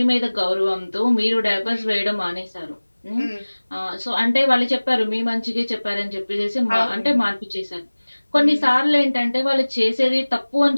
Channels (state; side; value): inverted; both; correlation -1.00